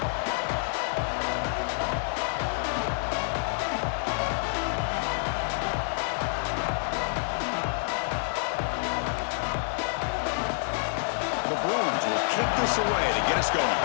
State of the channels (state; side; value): silent; right; digital silence